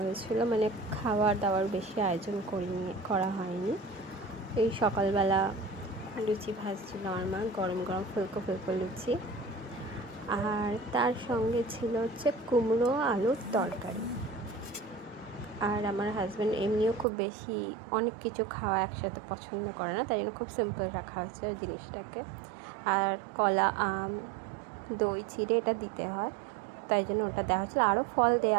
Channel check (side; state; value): left; drops out; at 17.1 s